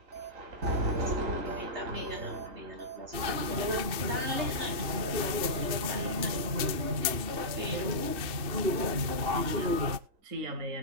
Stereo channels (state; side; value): late; left; 2.7 ms